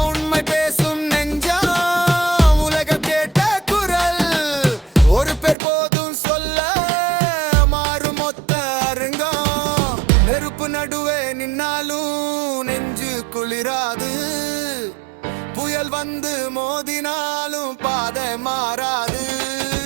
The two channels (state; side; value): drops out; left; at 5.6 s